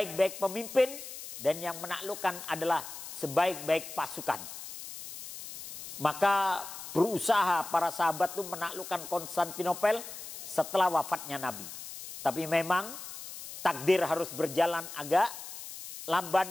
pemimpin, dan yang menaklukkan adalah sebaik-baik pasukan. Maka berusaha para sahabat itu menaklukkan Konstantinopel setelah wafatnya Nabi. Tapi memang takdir harus berjalan agak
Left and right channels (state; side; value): noise; left; hiss, 11 dB below the sound